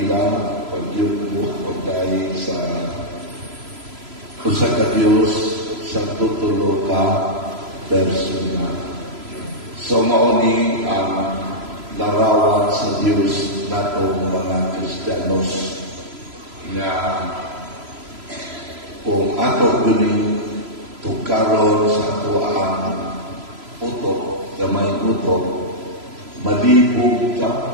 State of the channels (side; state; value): left; late; 3.0 ms